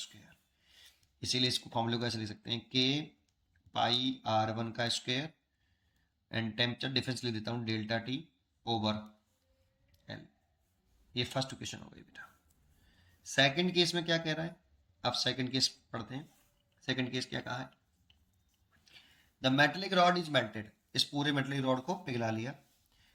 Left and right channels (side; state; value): both; identical; correlation 1.00